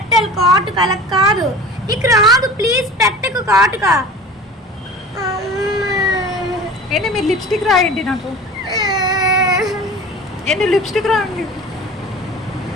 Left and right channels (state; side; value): normal; both; correlation 0.38